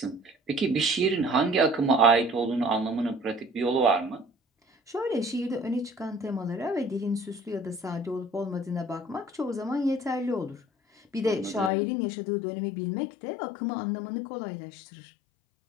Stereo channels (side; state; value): right; drops out; at 11.7 s